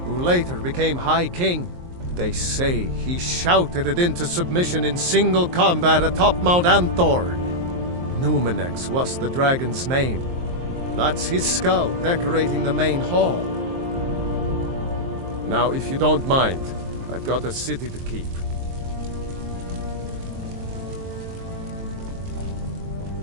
who later became High King. They say he shouted it into submission in single combat atop Mount Anthor. Numenex was the dragon's name. That's his skull decorating the main hall. Now, if you don't mind, I've got a city to keep.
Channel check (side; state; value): left; late; 23 ms